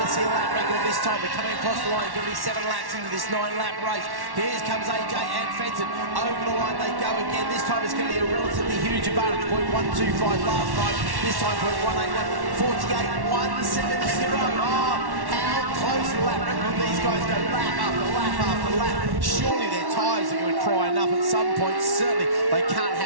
to see a lap record this time? We're coming across the line. It's going to be 7 laps into this 9-lap race. Here comes AJ and Fenton. Over the line they go again. This time it's going to be a relatively huge advantage. 0.125 last time. This time 0.181. 48.170. Oh, how close to the lap record these guys go lap after lap after lap. Surely their tyres are going to cry enough at some point. Certainly they can't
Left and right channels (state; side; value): late; left; 1.1 ms